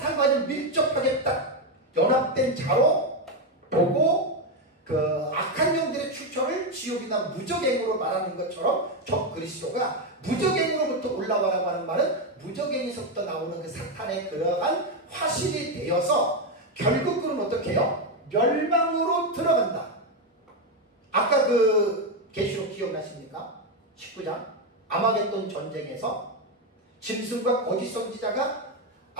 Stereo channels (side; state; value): both; normal; correlation 0.08